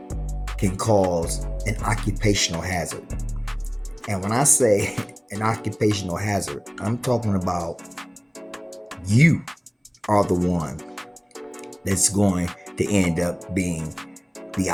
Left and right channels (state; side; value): identical; both; correlation 1.00